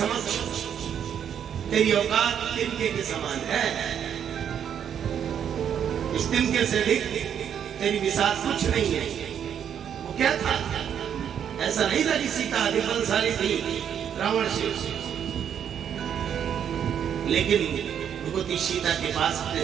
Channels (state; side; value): quieter; left; 8.7 dB